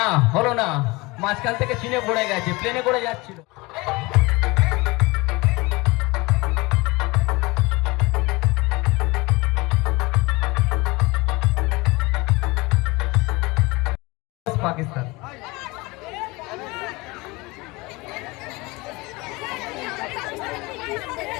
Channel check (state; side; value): quieter; right; 23.7 dB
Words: হলো না, মাঝখান থেকে চিনে পড়ে গেছে, প্লেনে করে যাচ্ছিল। পাকিস্তান